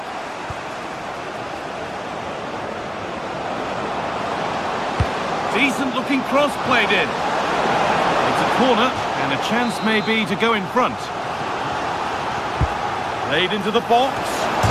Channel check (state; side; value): identical; both; correlation 1.00